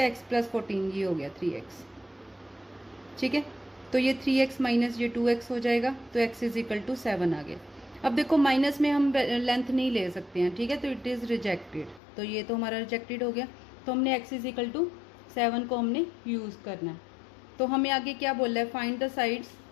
x प्लस 14 ये हो गया 3x। ठीक है, तो ये 3x माइनस ये 2x हो जाएगा, तो x इज इक्वल टू 7 आ गया। अब देखो माइनस में हम लेंथ नहीं ले सकते हैं। ठीक है, तो इट इज़ रिजेक्टेड, तो ये तो हमारा रिजेक्टेड हो गया। तो हमने x इज इक्वल टू 7 को हमने यूज़ करना है। तो हमें आगे क्या बोला है, find the sides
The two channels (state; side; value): drops out; right; at 12.0 s